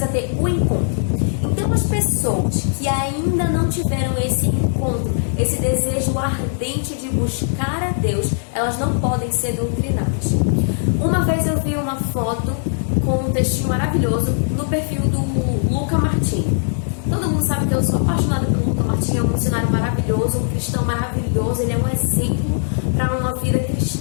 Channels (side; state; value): right; silent; digital silence